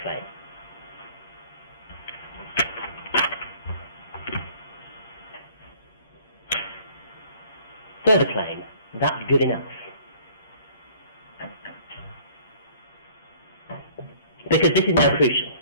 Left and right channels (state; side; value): inverted; both; correlation -0.54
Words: Claim. Further claim, that's good enough. Because this is now crucial.